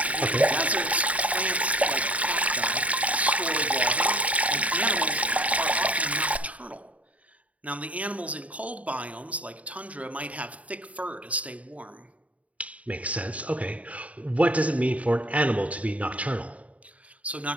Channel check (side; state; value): left; late; 0.068 ms